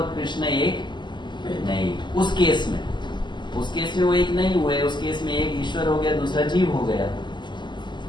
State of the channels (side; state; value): right; late; 0.22 ms